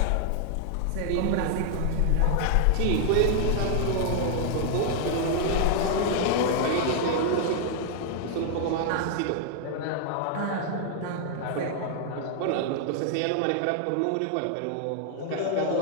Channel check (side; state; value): both; different; correlation 0.00